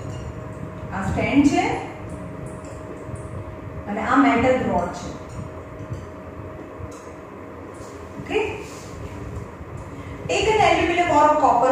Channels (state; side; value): identical; both; correlation 1.00